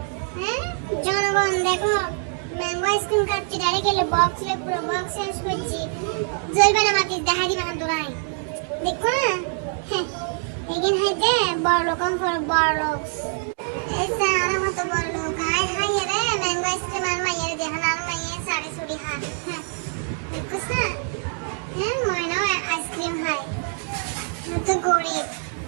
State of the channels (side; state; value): left; silent; 57 dB below the other